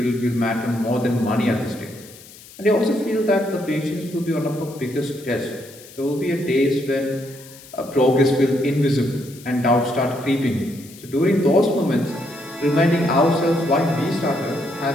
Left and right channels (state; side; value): noise; left; hiss, 20 dB below the sound